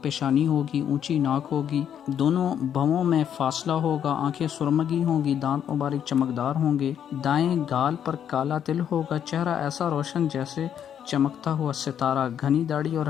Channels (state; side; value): quieter; right; 9.1 dB